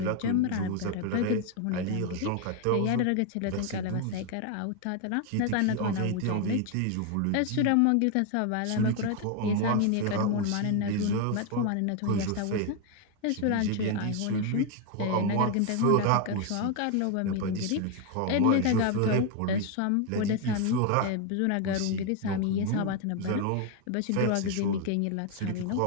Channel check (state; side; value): different; both; correlation 0.01